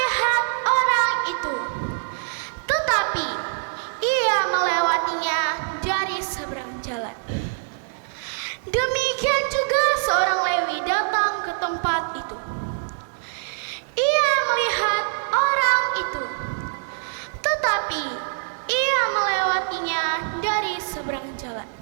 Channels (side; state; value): left; silent; digital silence